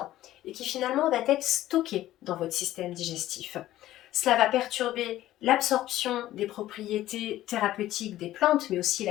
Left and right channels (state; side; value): quieter; right; 14.4 dB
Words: et qui finalement va être stocké dans votre système digestif. Cela va perturber l'absorption des propriétés thérapeutiques des plantes, mais aussi